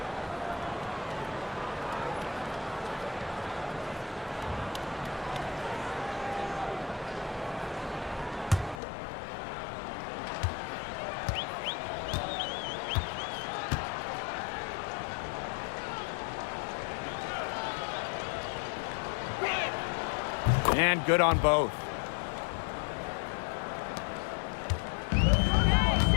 And good on both.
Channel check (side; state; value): right; drops out; at 8.8 s